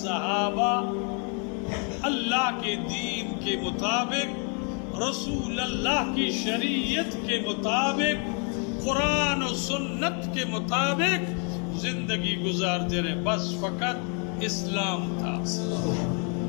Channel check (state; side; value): quieter; right; 39.0 dB